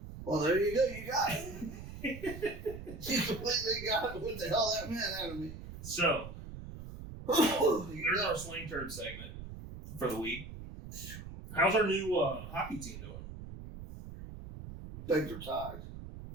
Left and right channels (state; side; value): noise; right; rumble, 11 dB below the sound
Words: Well, there you go. You got it. You completely got what the hell that meant out of me. So, there's our Slang Turd segment for the week. How's our new hockey team doing? Things are tied.